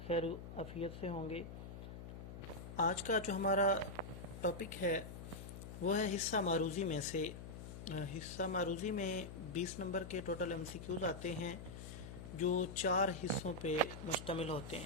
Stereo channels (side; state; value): left; noise; hum, 10 dB below the sound